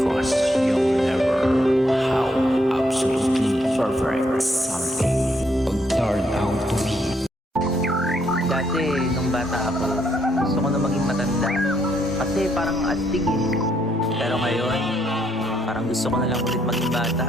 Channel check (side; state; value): both; normal; correlation 0.73